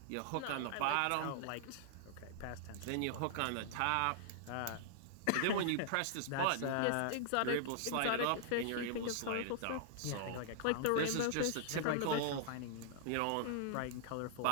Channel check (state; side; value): different; both; correlation -0.01